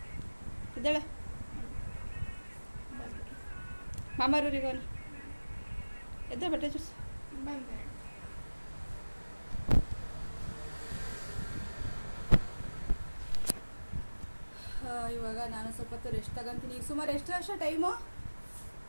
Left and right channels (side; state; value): both; inverted; correlation -1.00